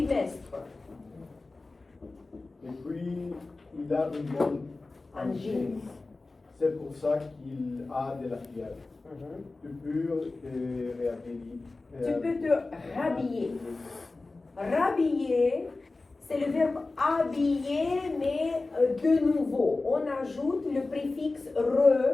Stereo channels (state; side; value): quieter; right; 3.4 dB